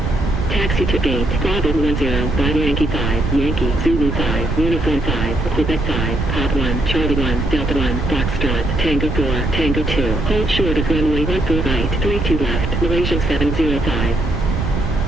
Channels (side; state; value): right; noise; rumble, 2 dB below the sound